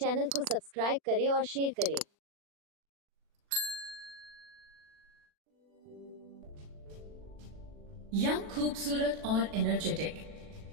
को सब्सक्राइब करें और शेयर करें। यंग, खूबसूरत और एनर्जेटिक।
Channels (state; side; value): late; left; 40 ms